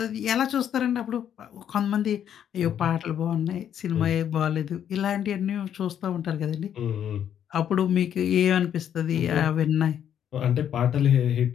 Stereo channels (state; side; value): quieter; right; 9.5 dB